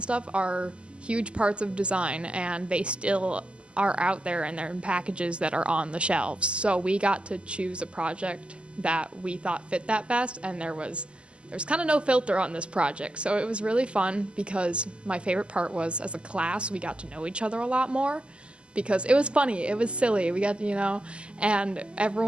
stuff, are huge parts of design, and they still are out there and they're in packages that are on the shelves. So we got to choose a project that we thought fit that best, and there's kind of no filter on this project. So it was really fun, because my favorite part was, as a class, we got to know each other a lot more, because it was funny, it was silly, we got and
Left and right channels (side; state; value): left; late; 0.053 ms